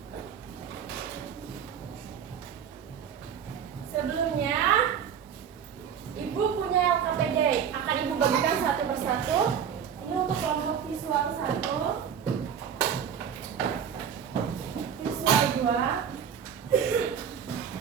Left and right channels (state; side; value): quieter; left; 8.1 dB